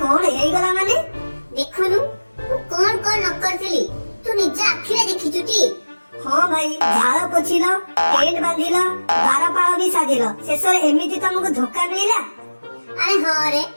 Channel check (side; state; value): both; inverted; correlation -1.00